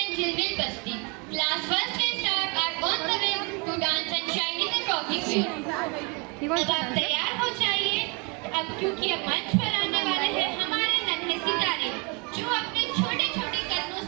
and children basti. Class first and start are on the way to dance and shine in the rocking field. अब आप तैयार हो जाइए, अब क्योंकि अब मंच पर आने वाले हैं हमारे नन्हे सितारे, जो अपने छोटे छोटे कदमों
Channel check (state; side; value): quieter; left; 31.6 dB